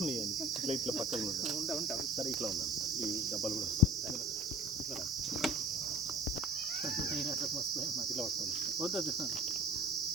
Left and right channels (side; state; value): both; normal; correlation 0.45